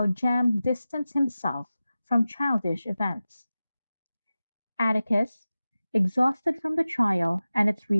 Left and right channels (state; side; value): inverted; both; correlation -0.95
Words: Jem distanced himself from childish events. Atticus, exhausted from the trial and its